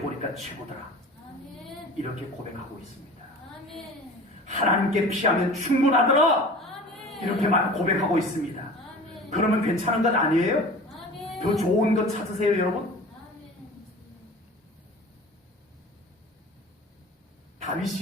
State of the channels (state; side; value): normal; both; correlation 0.39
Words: 최고더라. 아멘. 이렇게 고백하고 있습니다. 아멘. 하나님께 피하면 충분하더라. 아멘. 이렇게만 고백하고 있습니다. 아멘. 그러면 괜찮은 것 아니에요? 아멘. 더 좋은 것 찾으세요, 여러분. 아멘.